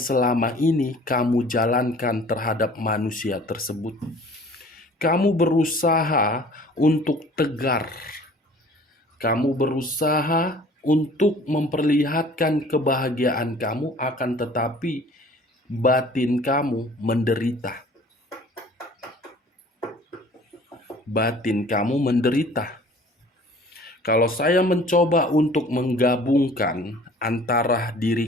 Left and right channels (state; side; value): normal; both; correlation 0.49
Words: ini kamu jalankan terhadap manusia tersebut. Kamu berusaha untuk tegar. Kamu berusaha untuk memperlihatkan kebahagiaan kamu, akan tetapi batin kamu menderita. Batin kamu menderita. Kalau saya mencoba untuk menggabungkan antara